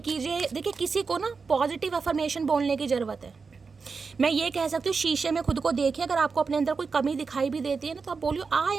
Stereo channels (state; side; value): quieter; left; 4.9 dB